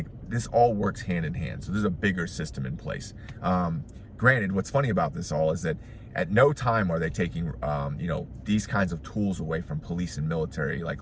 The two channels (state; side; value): identical; both; correlation 1.00